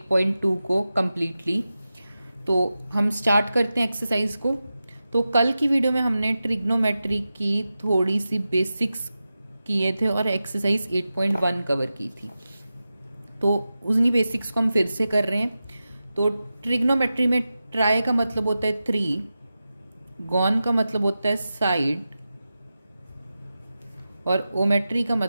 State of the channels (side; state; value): both; inverted; correlation -0.93